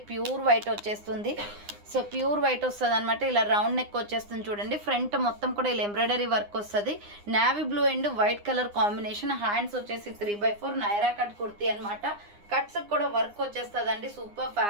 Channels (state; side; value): late; left; 9.8 ms